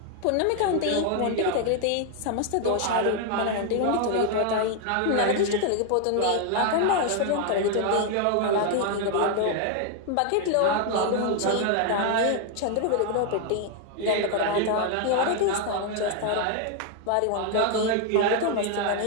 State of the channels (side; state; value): both; different; correlation 0.00